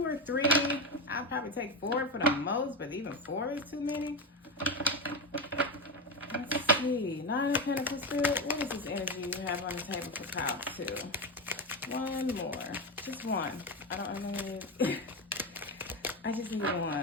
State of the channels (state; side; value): normal; both; correlation 0.15